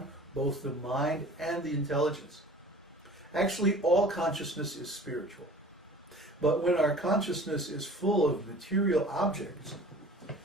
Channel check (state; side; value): normal; both; correlation 0.45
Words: both the mind and the intelligence. Actually, all consciousness is spiritual. But when our consciousness is full of material objects,